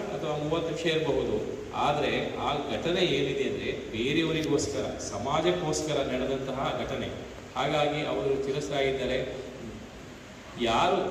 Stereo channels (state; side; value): identical; both; correlation 1.00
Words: ಅಥವಾ 30 ನಿಮಿಷ ಇರಬಹುದು. ಆದರೆ ಆ ಘಟನೆ ಏನಿದೆ ಅಂದರೆ ಬೇರೆಯವರಿಗೋಸ್ಕರ, ಸಮಾಜಕ್ಕೋಸ್ಕರ ನಡೆದಂತಹ ಘಟನೆ. ಹಾಗಾಗಿ ಅವರು ಚಿರಸ್ಥಾಯಿದ್ದಾರೆ. ಯಾರು